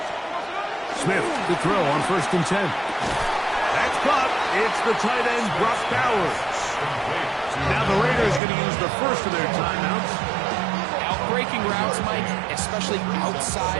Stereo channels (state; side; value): drops out; left; at 8.4 s